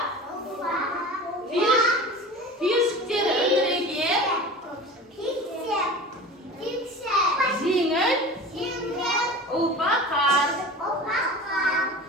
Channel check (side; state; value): both; normal; correlation 0.36